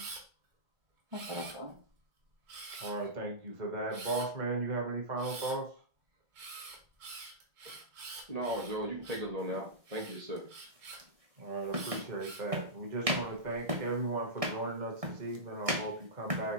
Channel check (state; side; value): late; left; 1.6 ms